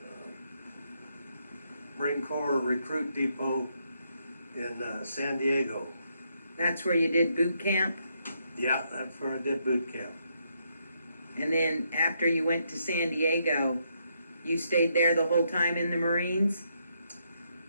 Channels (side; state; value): both; inverted; correlation -0.77